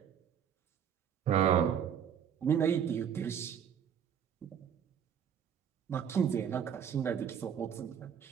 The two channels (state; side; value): quieter; left; 8.4 dB